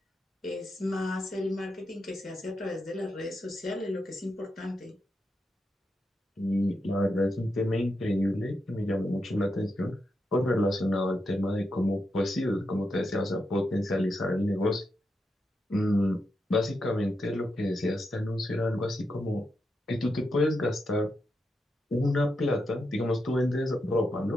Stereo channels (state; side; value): normal; both; correlation 0.85